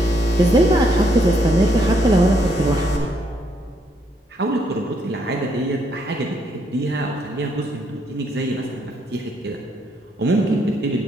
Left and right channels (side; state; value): both; normal; correlation 0.73